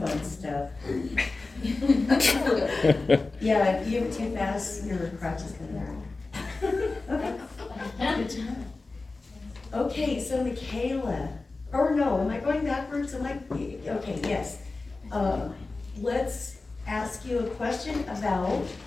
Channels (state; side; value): quieter; right; 3.6 dB